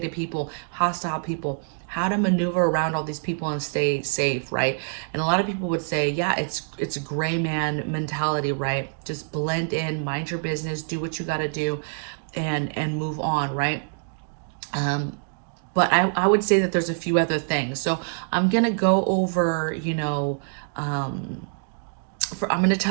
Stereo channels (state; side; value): silent; left; digital silence